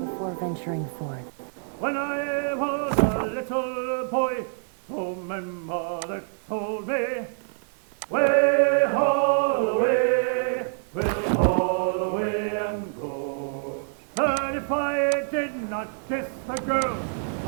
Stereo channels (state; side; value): silent; left; digital silence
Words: venturing forth. When I was a little boy, so my mother told me, way, haul away, we'll haul away and go. And if I did not kiss the girl,